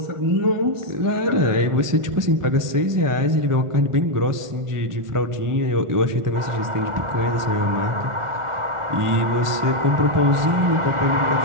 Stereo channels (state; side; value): late; left; 1.4 ms